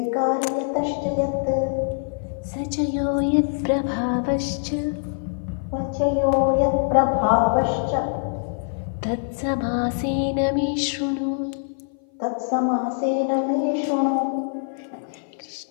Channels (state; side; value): silent; right; 57 dB below the other